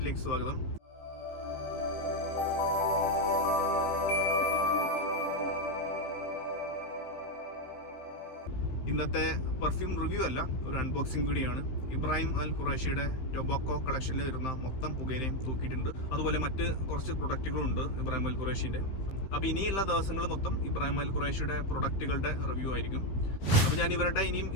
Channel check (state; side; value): late; right; 15 ms